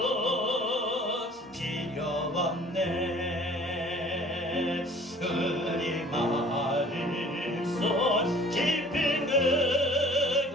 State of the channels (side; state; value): both; normal; correlation 0.51